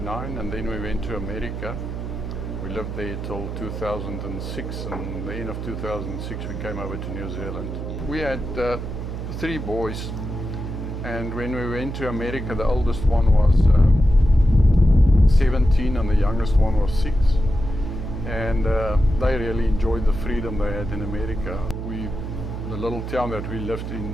and then we went to America. We lived there till 2006, and the end of 2006 we came over to New Zealand. We had 3 boys, and when we went to America, the oldest one was 17 and the youngest one was 6. And they really enjoyed the freedom they had in America. The little town that we lived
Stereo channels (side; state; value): right; noise; hum, 6 dB below the sound